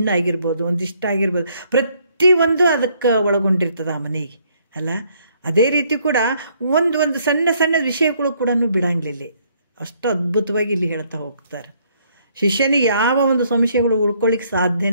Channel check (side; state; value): both; inverted; correlation -0.67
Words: ಆಗಿರ್ಬೋದು, ಒಂದಿಷ್ಟು ಆಗಿರ್ಬೋದು, ಪ್ರತಿಯೊಂದು ಅದಕ್ಕೆ ಒಳಗೊಂಡಿರ್ತದೆ ಆ ಮನೆಗೆ ಅಲ್ಲ. ಅದೇ ರೀತಿ ಕೂಡ ಒಂದು ಸಣ್ಣ ವಿಷಯಗಳು ಕೂಡ ಬಿಡಂಗಿಲ್ಲ. ಅಷ್ಟು ಅದ್ಭುತವಾಗಿ ಇಲ್ಲಿ ಹೇಳ್ತಾ ಹೋಗ್ತಾರೆ. ಶಿಷ್ಯನಿಗೆ ಯಾವ ಒಂದು ಸಂಶಯಗಳು ಉಳ್ಕೊಳ್ಳಿಕ್ಕೆ